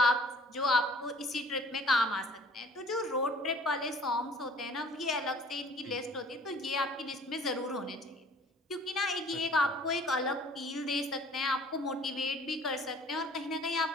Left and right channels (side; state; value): both; normal; correlation 0.52